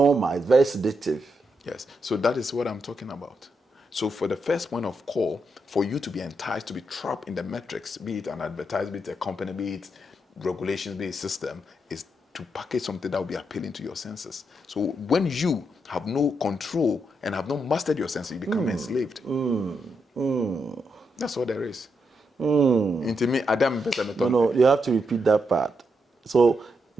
It's very sedative. Yes, so that is what I'm talking about. So for the first point of call, for you to be enticed, to be trapped in the metrics, be it an advertisement, be it a company, be it regulations, be it a system, is to package something that will be appealing to your senses. So when you have no control and have not mastered your senses, you become enslaved. That's what there is. Into me, Adam. No, you have to repeat that part. So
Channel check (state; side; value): normal; both; correlation 0.82